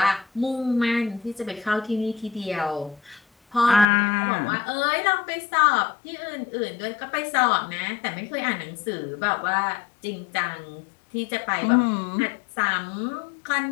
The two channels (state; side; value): drops out; right; at 3.9 s